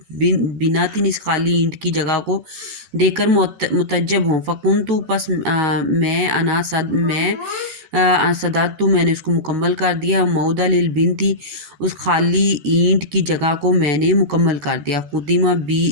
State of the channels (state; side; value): late; left; 13 ms